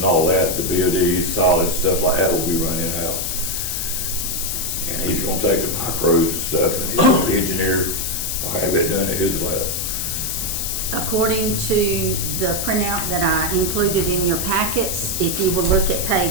all that, the BODs, solids, stuff like that will be run in-house. And he's gonna take the micros and stuff, and the engineer will have it done at his lab. According to the printout that I included in your packets, if you will look at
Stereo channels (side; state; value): left; noise; hiss, 2 dB below the sound